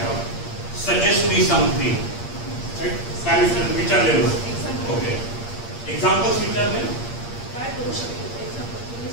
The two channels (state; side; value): late; right; 8.6 ms